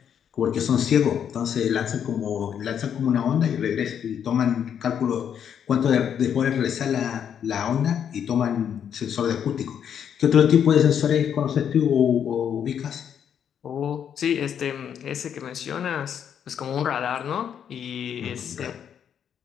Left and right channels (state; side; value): quieter; right; 8.5 dB